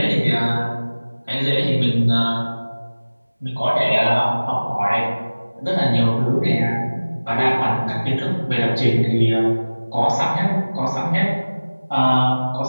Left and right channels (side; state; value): both; inverted; correlation -1.00